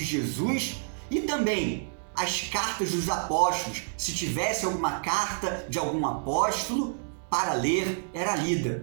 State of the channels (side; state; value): left; silent; 59 dB below the other